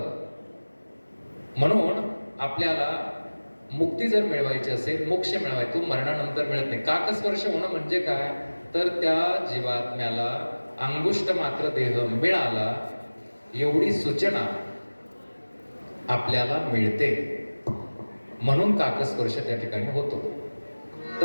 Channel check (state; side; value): inverted; both; correlation -1.00